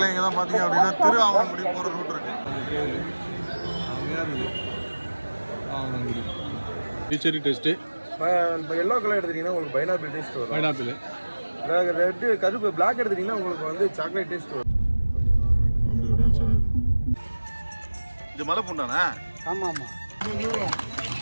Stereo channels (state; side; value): inverted; both; correlation -1.00